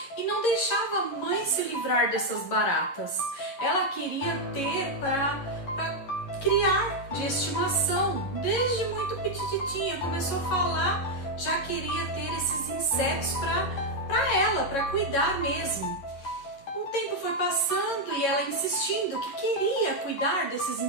e não deixava a mãe se livrar dessas baratas. Ela queria ter para criar de estimação, desde muito petititinha, começou a falar, já queria ter esses insetos para ela, para cuidar mesmo. O tempo foi passando e ela insistindo que queria cuidar desses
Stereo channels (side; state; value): right; late; 11 ms